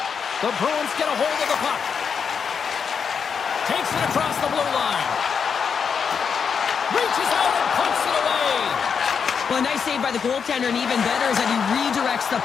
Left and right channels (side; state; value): right; quieter; 6.5 dB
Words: The Bruins get a hold of the puck. Takes it across the blue line. Reaches out and punts it away. Well, a nice save by the goaltender, and even better is that he redirects the